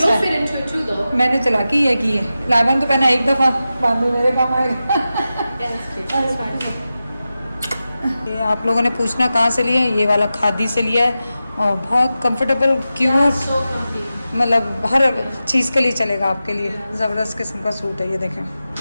fit into it too, though. मैंने चला की है की है, लाइबा ने तो पहना एक दफ़ा, बाद में मेरे काम आएगा। Yeah, that's cute. That's fine. ये आप लोगों ने पूछना कहाँ से लिया है, ये वाला खादी से लिया है, और बहुत कंफर्टेबल, क्यूट, So comfy. मतलब हर चीज़ के लिए चलेगा आपके लिए। ज़बरदस्त किस्म का सूट है ये, देखें,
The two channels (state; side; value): inverted; both; correlation -0.93